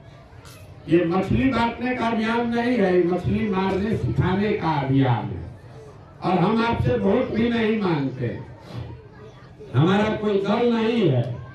ये मछली बांटने का अभियान नहीं है, मछली मारने सिखाने का अभियान है। और हम आपसे वोट भी नहीं मांगते, हमारा कोई दल नहीं है,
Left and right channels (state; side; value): identical; both; correlation 1.00